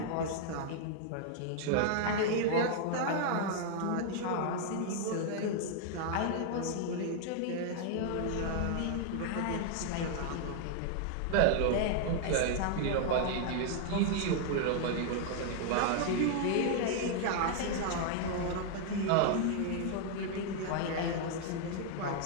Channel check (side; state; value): both; different; correlation 0.00